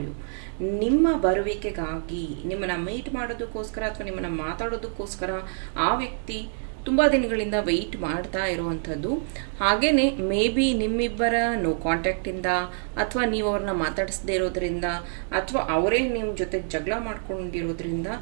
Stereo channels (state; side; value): silent; left; 61 dB below the other